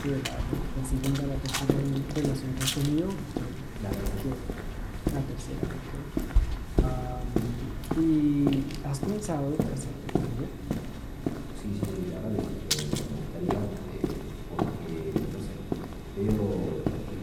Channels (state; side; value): identical; both; correlation 1.00